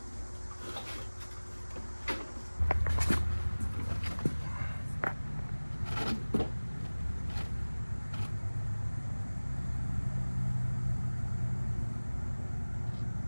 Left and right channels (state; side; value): inverted; both; correlation -1.00